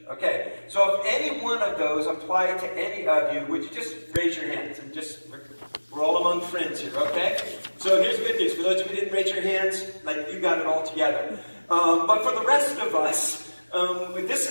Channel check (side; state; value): both; inverted; correlation -1.00